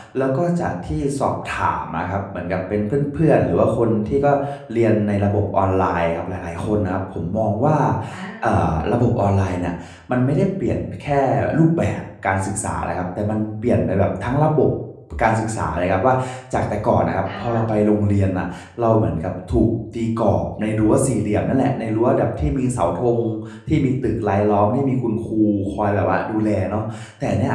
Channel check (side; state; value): both; identical; correlation 1.00